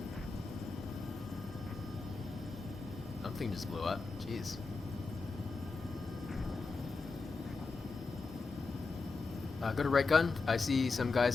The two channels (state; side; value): quieter; right; 4.1 dB